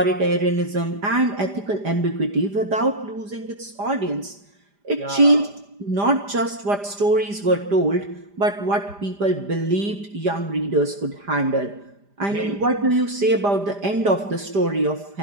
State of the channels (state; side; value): late; left; 5.0 ms